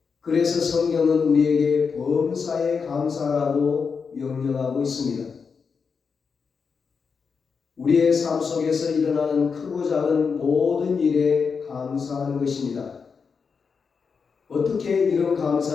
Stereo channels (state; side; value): quieter; right; 5.6 dB